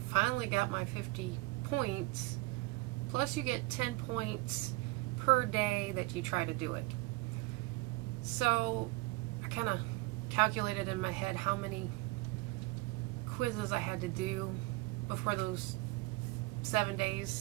finally got my 50 points, plus you get 10 points per day that you try to do it. So I kind of calculated in my head how many quizzes I had to do before those 7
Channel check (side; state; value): left; quieter; 22.0 dB